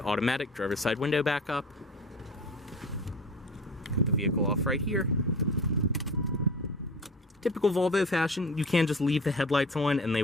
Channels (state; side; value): normal; both; correlation 0.37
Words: automatic driver's side window back up. Put the vehicle off right here. Typical Volvo fashion, you can just leave the headlights on and they